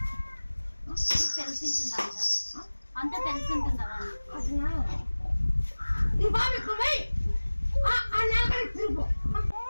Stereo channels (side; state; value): both; inverted; correlation -1.00